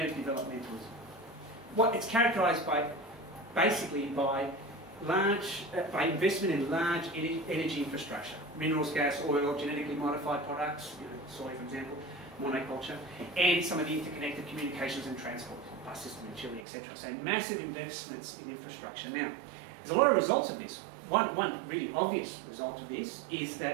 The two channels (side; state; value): left; drops out; at 16.7 s